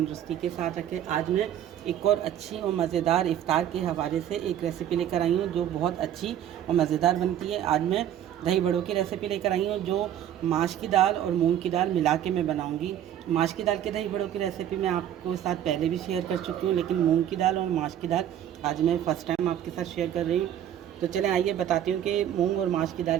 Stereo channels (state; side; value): quieter; left; 10.7 dB